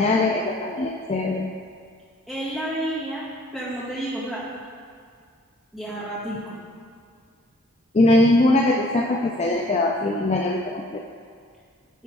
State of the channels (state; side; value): normal; both; correlation 0.57